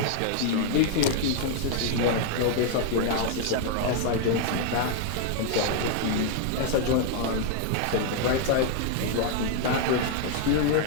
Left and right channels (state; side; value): different; both; correlation 0.00